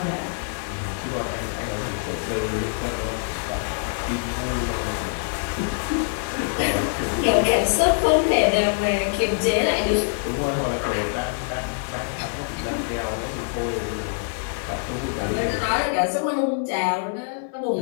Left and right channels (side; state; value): right; silent; 57 dB below the other